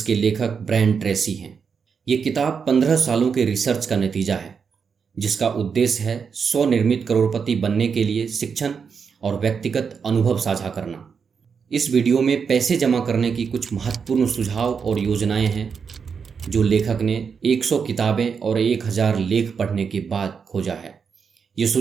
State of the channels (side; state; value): left; quieter; 6.1 dB